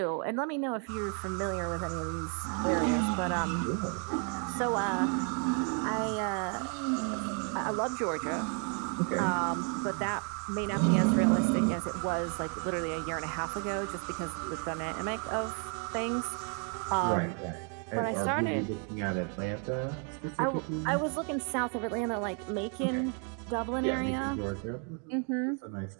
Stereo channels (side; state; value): left; quieter; 39.9 dB